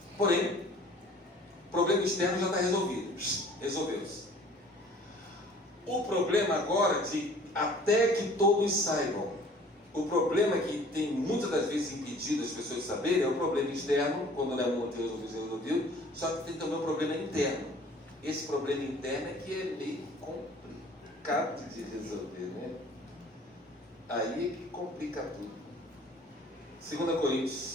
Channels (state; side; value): normal; both; correlation 0.51